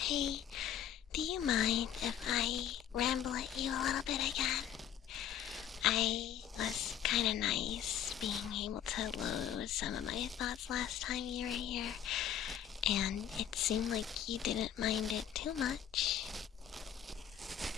do you mind if I ramble at you a little bit again? I was kinda nice being able to lose some of my thoughts last time you were here, and it seemed like you didn't mind it too much.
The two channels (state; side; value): quieter; right; 9.8 dB